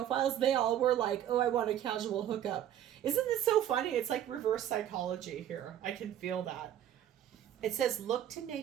they all were like, oh, I want a casual hookup. Isn't this so funny? It's like reverse psychology here. I can feel that. It says, look to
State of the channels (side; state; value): left; quieter; 10.9 dB